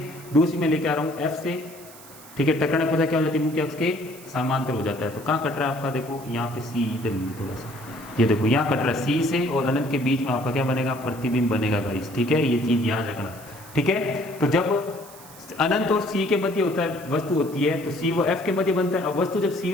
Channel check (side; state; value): right; noise; hiss, 19 dB below the sound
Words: दूसरी में लेके आ रहा हूँ F से, ठीक है। टकराने पर क्या हो जाती है, मुख्य अक्ष के समांतर हो जाता है। तो कहाँ कट रहा है आपका, देखो यहाँ पे C, इधर थोड़ा सा, ये देखो यहाँ कट रहा है C से, और अनंत के बीच में आपका क्या बनेगा, प्रतिबिंब बनेगा गाइस, ठीक है। ये चीज याद रखना, ठीक है। तो जब अनंत और C के मध्य होता है, वस्तु होती है, तो C व F के मध्य बनता है। अब वस्तु जब C